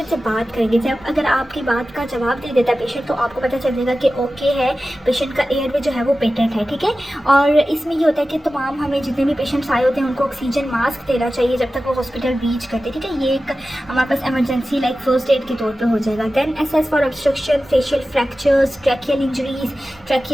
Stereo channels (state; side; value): normal; both; correlation 0.94